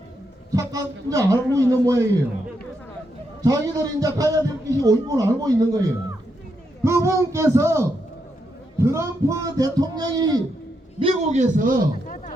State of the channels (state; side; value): normal; both; correlation 0.81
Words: 잠깐 이제 알고 있는 모양이에요. 자기들이 이제 가야 될 것이 옳고 알고 있는 거예요. 그분께서 트럼프 대통령이 미국에서